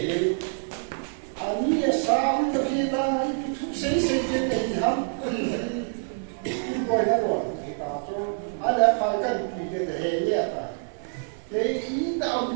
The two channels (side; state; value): left; silent; digital silence